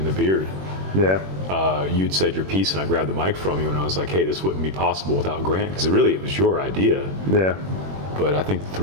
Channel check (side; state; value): left; late; 21 ms